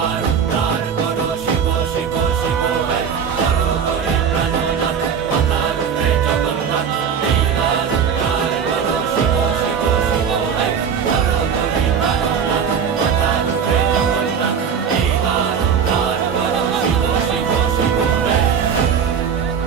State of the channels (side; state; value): left; quieter; 7.2 dB